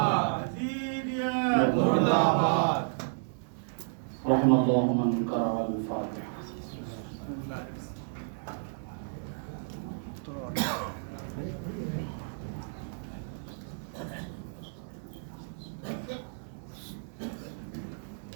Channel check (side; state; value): left; silent; digital silence